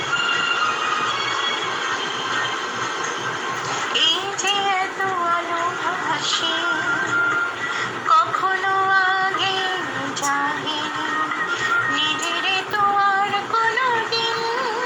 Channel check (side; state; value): both; identical; correlation 1.00